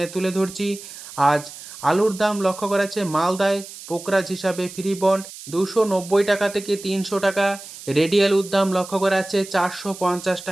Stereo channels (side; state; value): right; noise; hiss, 15 dB below the sound